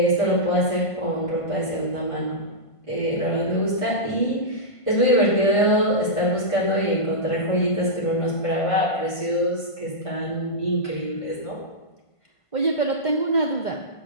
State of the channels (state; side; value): late; right; 1.5 ms